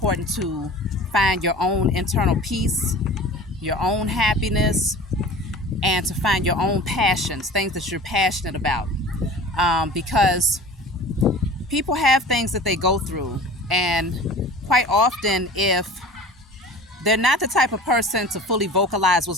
to find your own internal peace, your own happiness, and to find your own passions, things that you're passionate about. Because people have things that they go through, and quite often, if they're not the type of person to fully vocalize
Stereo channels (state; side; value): normal; both; correlation 0.41